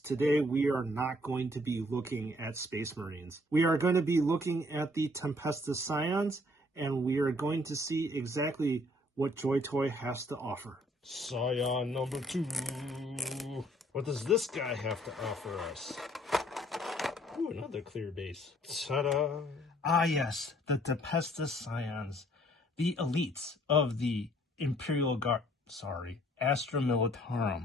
we are not going to be looking at Space Marines. We are going to be looking at the Tempestus Scions, and we are going to see exactly what JoyToy has to offer. Scion number 2. What does this guy have to offer us? Ooh, another clear base. Ta-da! Ah yes, the Tempestus Scions, the elites of the Imperial Guard, Astra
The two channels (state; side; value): normal; both; correlation 0.61